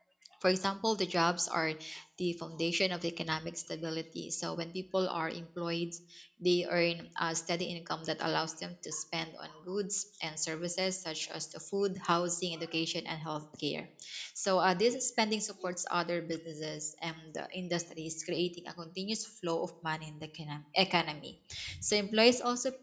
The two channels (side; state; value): both; identical; correlation 1.00